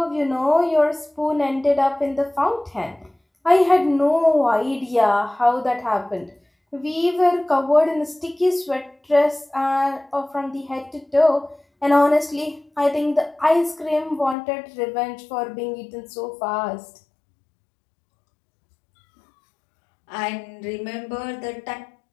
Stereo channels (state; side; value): drops out; right; at 14.4 s